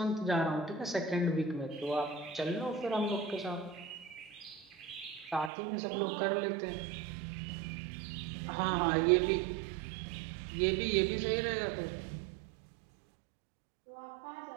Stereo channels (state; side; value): drops out; left; at 5.5 s